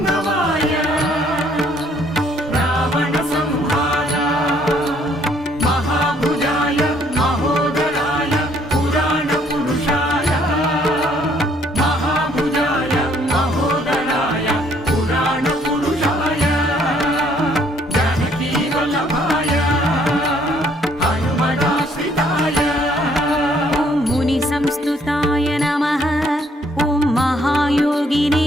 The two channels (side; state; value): both; normal; correlation 0.64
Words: रावणसंहार महाभुजाय महोदराय